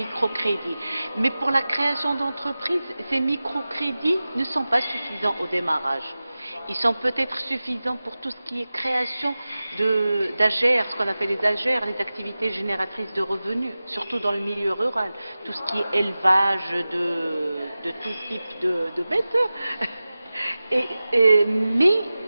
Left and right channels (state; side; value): inverted; both; correlation -0.96